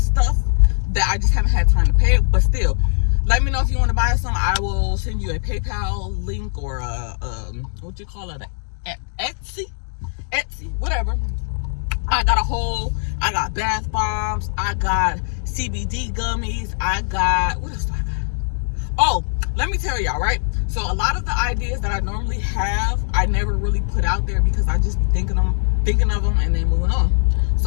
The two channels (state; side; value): silent; right; digital silence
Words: stuff that I just haven't had time to pay it. But still, let me know if you want to buy some. I will send you a PayPal link or what you call it, Etsy, whatever. I got bath bombs. I got CBD gummies. What else do I got? Oh, let me tell y'all, right? So a lot of the ideas that I normally have, I never really put out there because I just be thinking of them and then moving on.